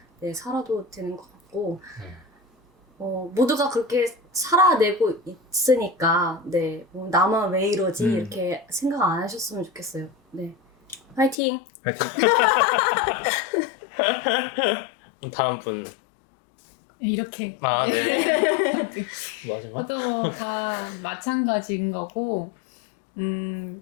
네, 살아도 되는 것 같고 모두가 그렇게 살아내고 있으니까 네, 나만 왜 이러지 이렇게 생각 안 하셨으면 좋겠어요. 네, 화이팅! 파이팅. 다음 분. 이렇게. 네. 마지막? 저도 다 마찬가지인 거고,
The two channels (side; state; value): right; drops out; at 11.4 s